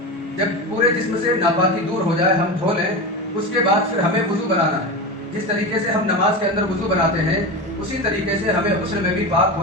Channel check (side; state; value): both; normal; correlation 0.23